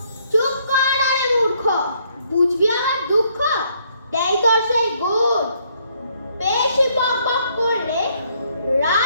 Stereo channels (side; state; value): both; inverted; correlation -0.69